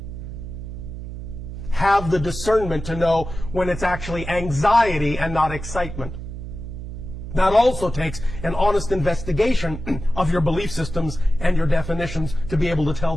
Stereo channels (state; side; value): noise; right; hum, 9 dB below the sound